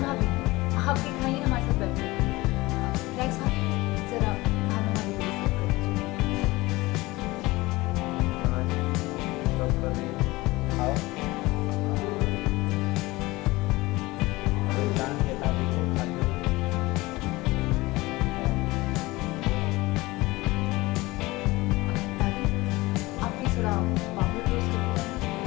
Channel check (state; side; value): quieter; right; 20.7 dB